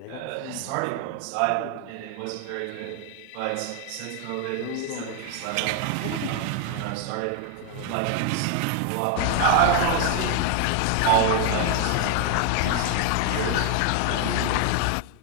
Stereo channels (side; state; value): both; different; correlation 0.00